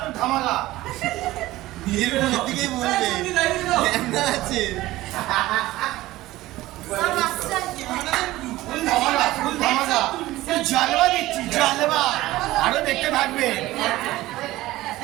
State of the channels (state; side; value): quieter; left; 17.1 dB